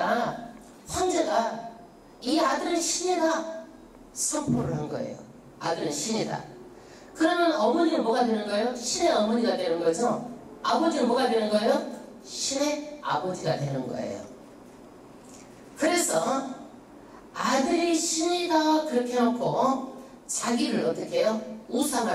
황제가 이 아들은 신이다 선포를 한 거예요. 아들은 신이다. 그러면 어머니는 뭐가 되는 거예요? 신의 어머니가 되는 거죠. 아버지는 뭐가 되는 거예요? 신의 아버지가 되는 거예요. 그래서 아들이 신이다 그렇게 해놓고 자기를 어떻게 해요?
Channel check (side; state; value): both; identical; correlation 1.00